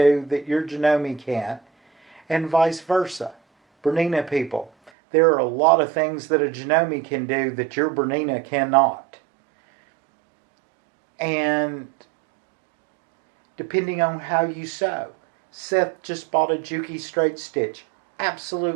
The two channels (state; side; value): drops out; left; at 4.9 s